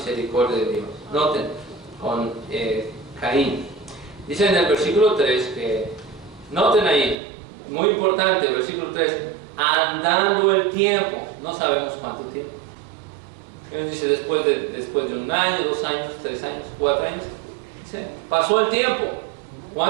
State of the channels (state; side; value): drops out; left; at 7.2 s